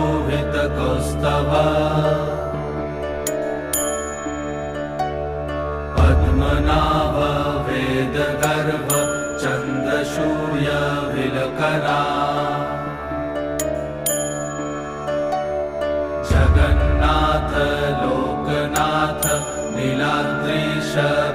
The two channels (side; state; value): both; identical; correlation 1.00